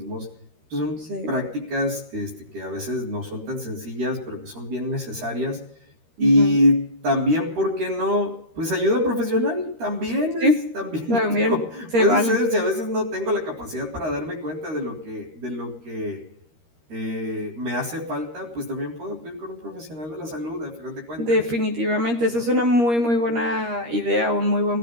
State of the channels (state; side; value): late; left; 13 ms